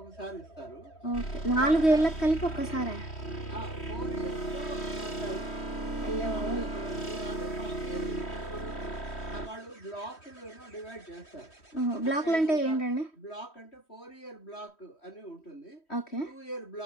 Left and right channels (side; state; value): right; late; 3.1 ms